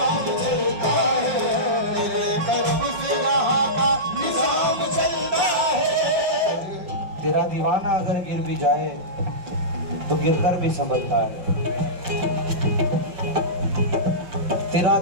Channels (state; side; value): late; left; 5.6 ms